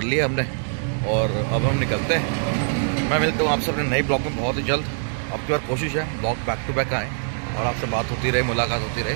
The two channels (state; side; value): silent; left; digital silence